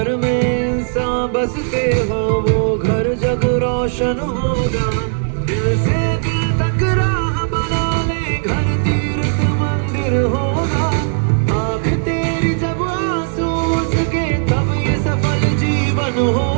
में इंसान बसते हो वो घर जग रोशन होगा. दिल से दिल तक राह बना ले घर तीर्थ मंदिर होगा. आँख तेरी जब आंसू उसके तब ये सफल जीवन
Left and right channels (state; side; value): silent; left; digital silence